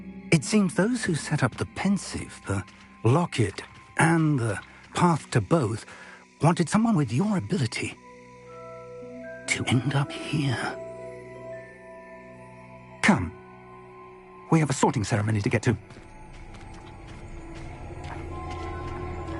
It seems those who set up the pensive, the locket, and the path to both wanted someone with your ability to end up here. Come. We have a sorting ceremony to get to.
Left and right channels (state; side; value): identical; both; correlation 1.00